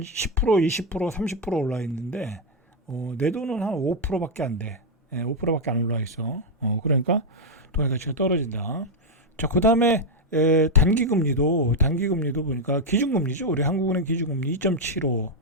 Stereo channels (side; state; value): both; normal; correlation 0.01